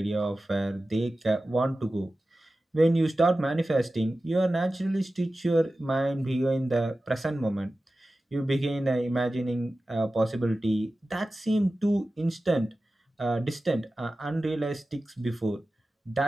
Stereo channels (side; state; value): both; normal; correlation 0.95